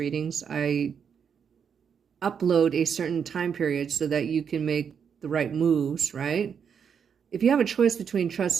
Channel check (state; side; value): quieter; left; 7.2 dB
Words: I upload a certain time period so that you can make the right moves, right? If you have a choice between